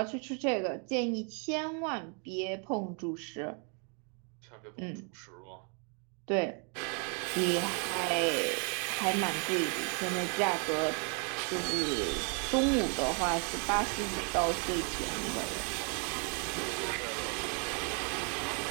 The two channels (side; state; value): left; quieter; 38.6 dB